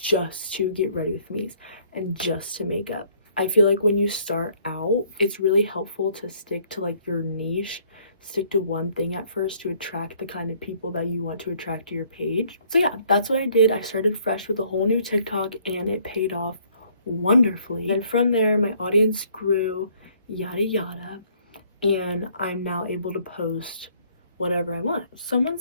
just to get ready with me's and just to makeup. I feel like when you start out, it's really helpful to stick to like your niche, stick to one thing at first to attract the kind of people that you want to attract to your page. So yeah, that's what I did. I started fresh with a whole new TikTok and it paid off wonderfully. And from there, my audience grew, yada yada, and I'm now able to post whatever I want. Someone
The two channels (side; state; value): both; inverted; correlation -0.63